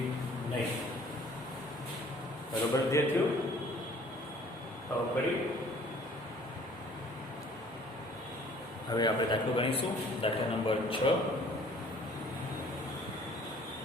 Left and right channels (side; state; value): both; normal; correlation 0.54